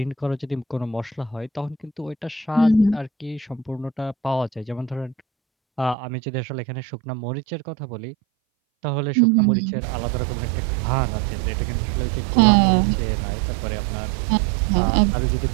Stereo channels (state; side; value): drops out; left; at 6.0 s